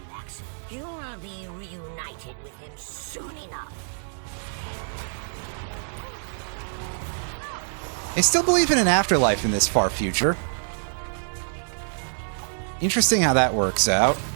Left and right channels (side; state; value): left; silent; digital silence